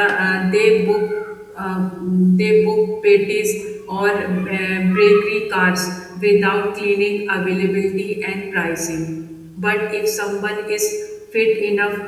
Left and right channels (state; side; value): identical; both; correlation 1.00